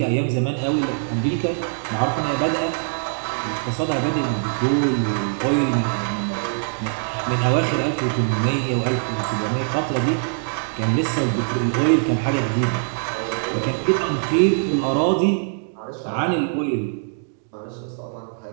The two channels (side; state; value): left; silent; digital silence